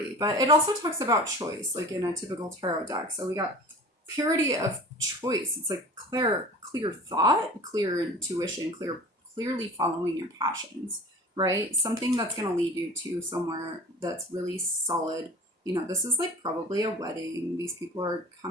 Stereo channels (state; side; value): normal; both; correlation 0.40